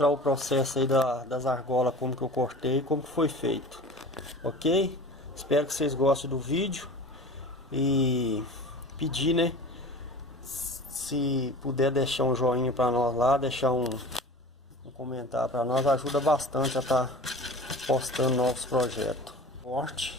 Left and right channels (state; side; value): normal; both; correlation 0.38